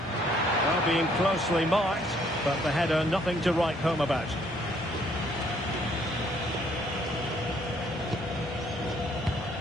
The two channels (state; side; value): normal; both; correlation 0.65